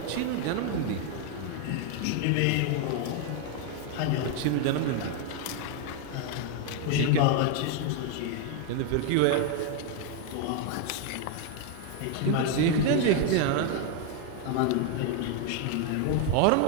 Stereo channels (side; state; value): both; different; correlation 0.01